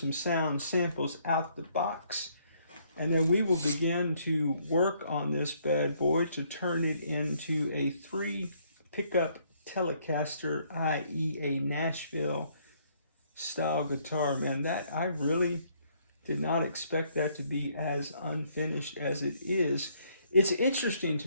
sound samples out the box. And then we will begin to work on this bad boy to turn it into a 3 pickup Telecaster, i.e. a Nashville style guitar. Man, that I really did not expect that to be as unfinished as it is. It's interesting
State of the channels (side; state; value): both; inverted; correlation -0.68